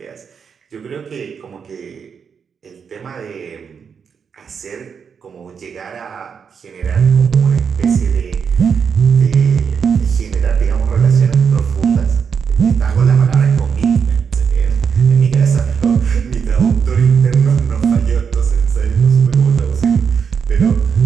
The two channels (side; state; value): left; quieter; 6.6 dB